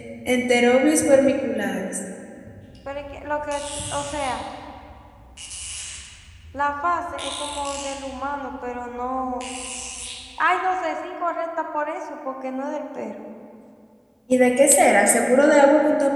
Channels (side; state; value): both; identical; correlation 1.00